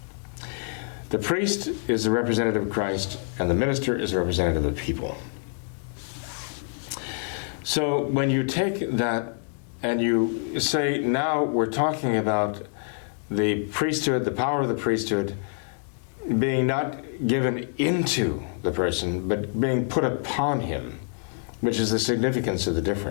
The priest is the representative of Christ, and the minister is the representative of the people. So when you take that and you say, now we're talking about the priesthood, the power of the priesthood, being not given into the person, but being put upon him, which is the significance of the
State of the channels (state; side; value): silent; right; 56 dB below the other